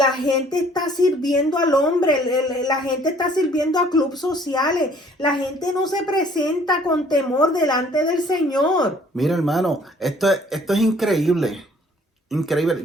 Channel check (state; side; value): normal; both; correlation 0.57